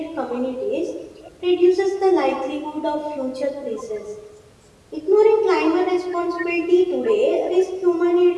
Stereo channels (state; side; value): identical; both; correlation 1.00